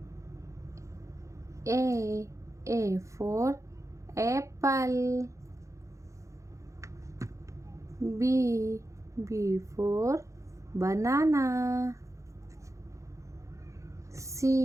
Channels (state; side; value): late; left; 0.15 ms